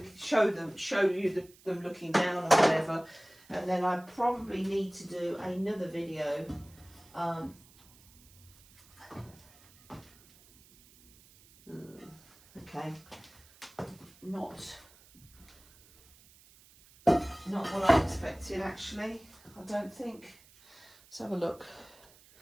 them looking down or whatever, and then I probably need to do another video okay, not what I expected, actually. I don't think. Let's have a look.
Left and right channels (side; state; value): right; noise; hiss, 26 dB below the sound